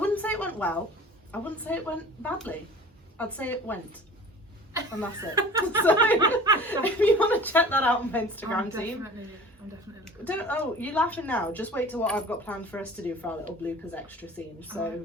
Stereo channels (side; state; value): both; normal; correlation 0.43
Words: say it went well. I wouldn't say it went badly. I'd say it went. And that's it. So, if you want to check that out on my Instagram team. I'm definitely looking. You're laughing now. Just wait till what I've got planned for us to do for our little bloopers extra scene. So, okay.